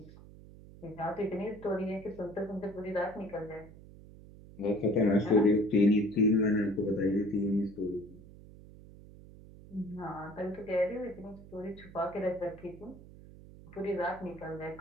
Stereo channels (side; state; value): right; noise; hum, 19 dB below the sound